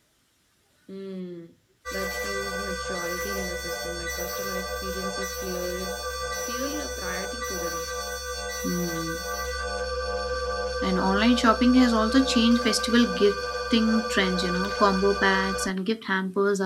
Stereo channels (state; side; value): identical; both; correlation 1.00